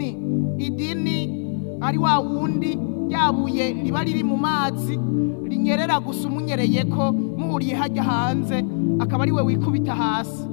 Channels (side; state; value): right; silent; digital silence